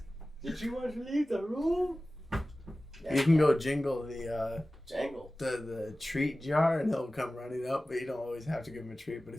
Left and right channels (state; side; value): normal; both; correlation 0.96